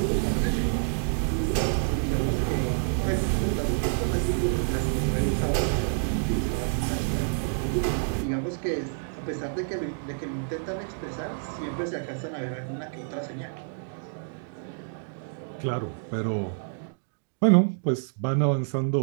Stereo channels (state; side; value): silent; left; digital silence